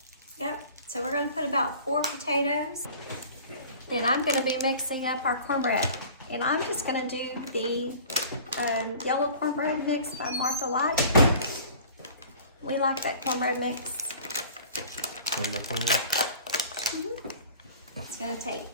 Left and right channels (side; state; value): both; inverted; correlation -0.45